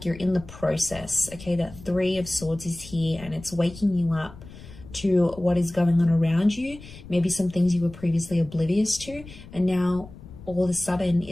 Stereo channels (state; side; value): noise; left; rumble, 17 dB below the sound